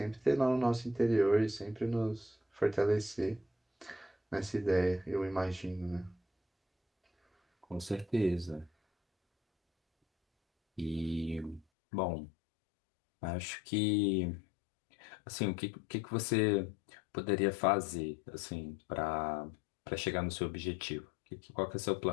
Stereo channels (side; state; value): right; drops out; at 11.7 s